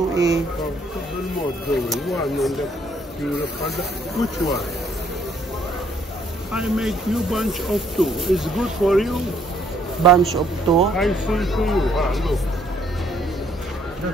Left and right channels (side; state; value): both; normal; correlation 0.66